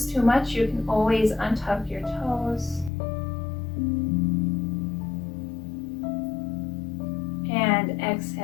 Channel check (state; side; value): drops out; right; at 2.9 s